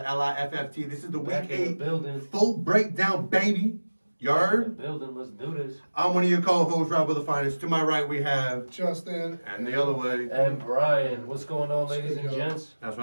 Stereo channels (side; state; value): both; inverted; correlation -1.00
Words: LIFFT. This is the Back Week in the 8 building. full breakdown, baby. You heard? Building. Let's do this. I'm one of your co-hosts, Rob of the Finest. To my right, we have... Justin. And the other way. And Brian, what's going on, ladies and Good, gents? That's